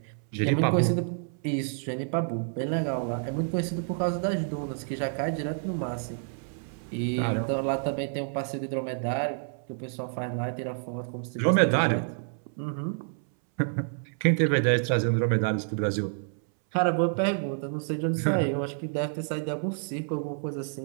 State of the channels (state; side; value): silent; left; 59 dB below the other